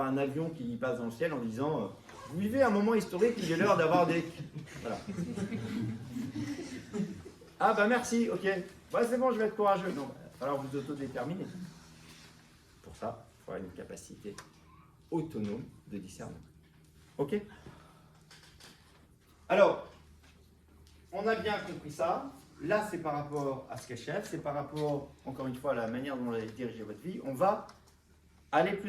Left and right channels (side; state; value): both; identical; correlation 1.00